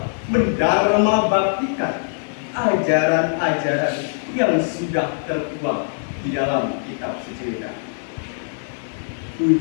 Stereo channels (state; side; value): silent; right; digital silence